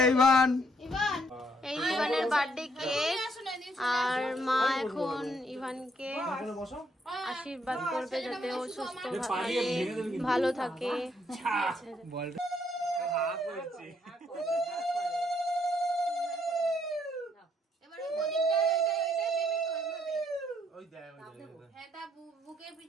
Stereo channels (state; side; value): normal; both; correlation 0.70